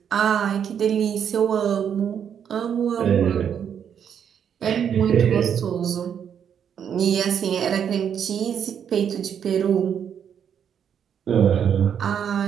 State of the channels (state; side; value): quieter; left; 8.3 dB